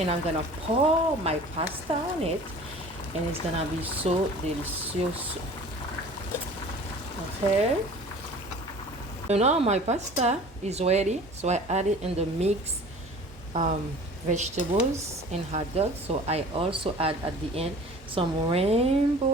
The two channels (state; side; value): normal; both; correlation 0.44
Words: I'm gonna pour my pasta on it, and it's gonna be so delicious. Okay, so now my pasta is ready, so I add it in the mix vegetables and hot dog. So I also add at the end some